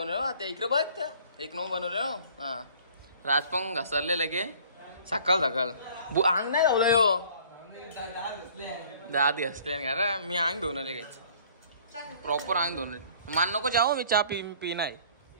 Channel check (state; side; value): inverted; both; correlation -0.53